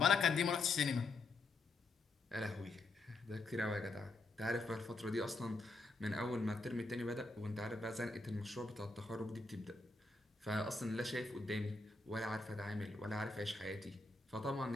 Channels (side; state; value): right; quieter; 3.3 dB